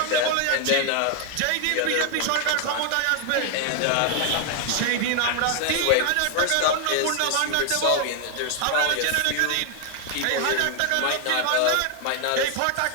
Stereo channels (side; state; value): both; different; correlation 0.00